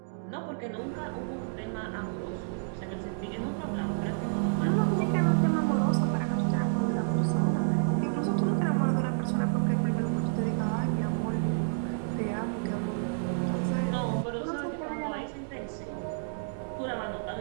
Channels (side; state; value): left; silent; digital silence